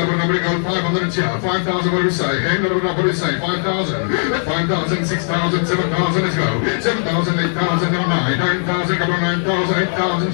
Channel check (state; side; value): silent; right; digital silence